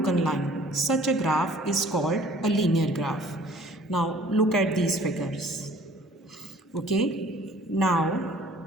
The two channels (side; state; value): both; normal; correlation 0.53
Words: line. Such a graph is called a linear graph. Now look at these figures. Okay, now